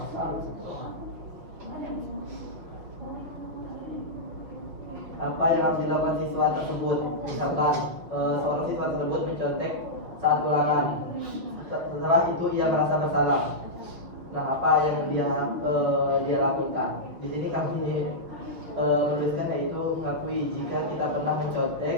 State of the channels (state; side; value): late; left; 5.8 ms